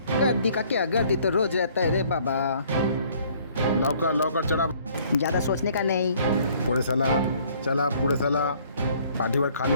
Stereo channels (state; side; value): inverted; both; correlation -0.59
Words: गर्दी का क्या, गर्दी तो रोज रहता है रे बाबा। लवकर लवकर चला, ज़्यादा सोचने का नहीं। पुढे चला, चला पुढे चला, पाठीवर